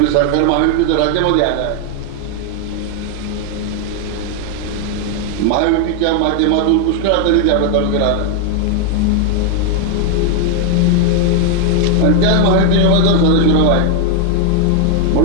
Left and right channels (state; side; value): different; both; correlation 0.00